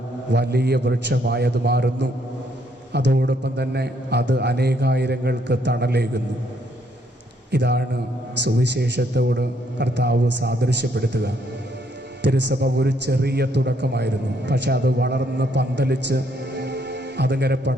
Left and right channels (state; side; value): normal; both; correlation 0.70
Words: വലിയ വൃക്ഷമായി അത് മാറുന്നു. അതോടൊപ്പം തന്നെ അത് അനേകായിരങ്ങൾക്ക് തണലേകുന്നു. ഇതാണ് സുവിശേഷത്തോട് കർത്താവ് സാദൃശ്യപ്പെടുത്തുക. തിരുസഭ ഒരു ചെറിയ തുടക്കമായിരുന്നു. പക്ഷെ അത് വളർന്ന് പന്തലിച്ച് അതിങ്ങനെ